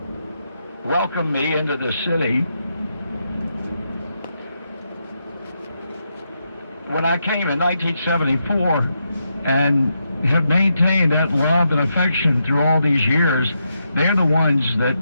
welcomed me into the city when I came in 1974 and have maintained that love and affection through all these years, they're the ones that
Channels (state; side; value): inverted; both; correlation -0.83